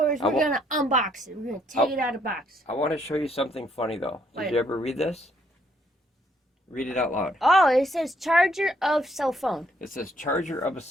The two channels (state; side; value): normal; both; correlation 0.69